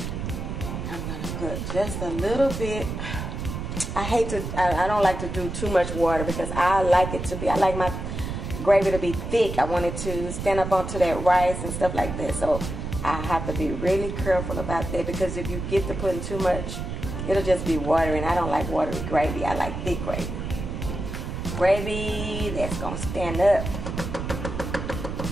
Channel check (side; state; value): right; noise; rumble, 5 dB below the sound